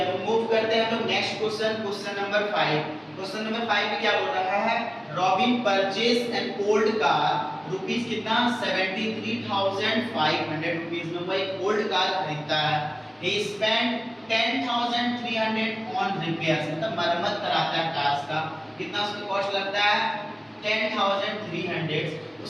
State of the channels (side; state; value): both; identical; correlation 1.00